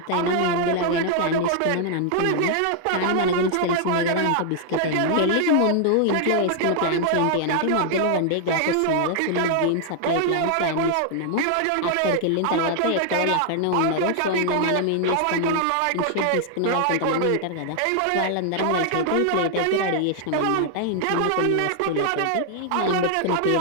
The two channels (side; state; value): both; different; correlation 0.00